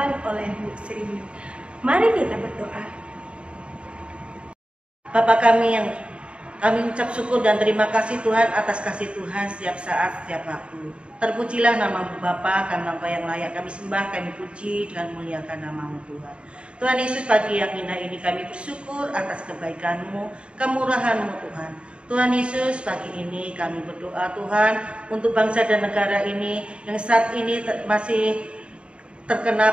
oleh Bu Sri. Mari kita berdoa. Bapa kami yang kami ucap syukur dan terima kasih Tuhan atas kasih Tuhan setiap saat, setiap waktu. Terpujilah nama-Mu Bapa, karena Engkau yang layak kami sembah, kami puji dan muliakan nama-Mu Tuhan. Tuhan Yesus, pagi yang indah ini kami bersyukur atas kebaikan-Mu, kemurahan-Mu Tuhan. Tuhan Yesus, pagi ini kami berdoa Tuhan untuk bangsa dan negara ini yang saat ini masih terkena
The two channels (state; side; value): late; left; 0.057 ms